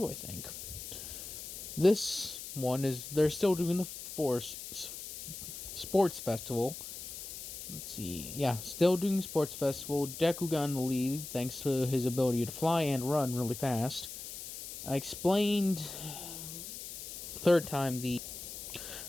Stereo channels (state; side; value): noise; left; hiss, 10 dB below the sound